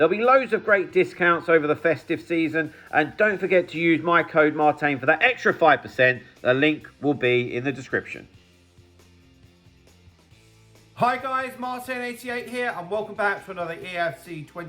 be loads of great discounts over the festive season, and don't forget to use my code Martain for that extra 5%. The link will be in the description. Hi guys, Martain88 here, and welcome back to another Eafc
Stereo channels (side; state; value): both; identical; correlation 1.00